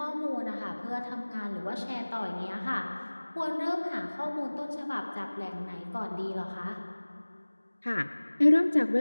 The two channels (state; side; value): inverted; both; correlation -1.00